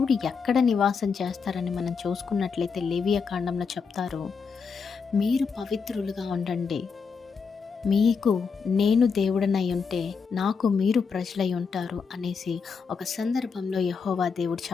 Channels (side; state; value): right; quieter; 5.6 dB